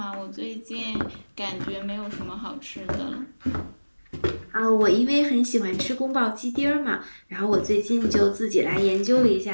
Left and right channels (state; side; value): inverted; both; correlation -1.00